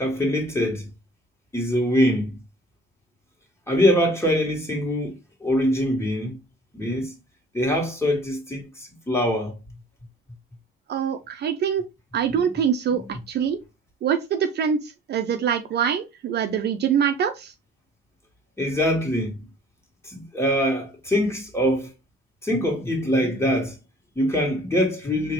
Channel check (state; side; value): normal; both; correlation 0.49